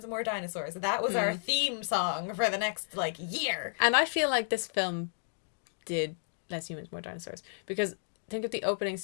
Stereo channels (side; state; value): right; silent; digital silence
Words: more dinosaurs. That was our theme song for the next, year. And I feel like this film did less humans, more dinosaurs. Because think of the opening